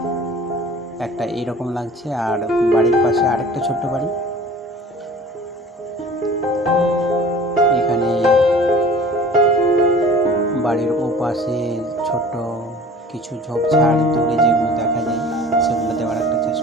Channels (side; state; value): both; normal; correlation 0.44